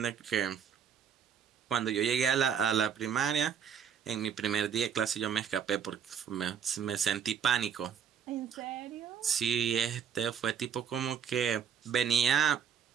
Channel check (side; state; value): left; quieter; 7.8 dB